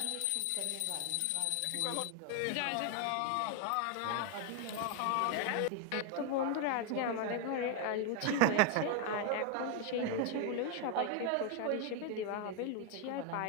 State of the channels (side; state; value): both; different; correlation 0.00